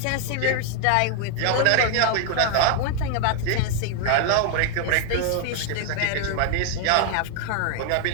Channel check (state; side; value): different; both; correlation 0.00